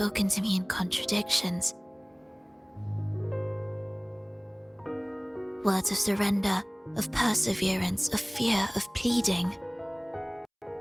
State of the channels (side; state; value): both; identical; correlation 1.00